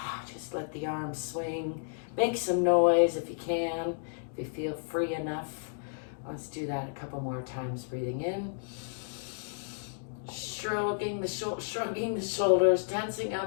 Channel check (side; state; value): right; silent; digital silence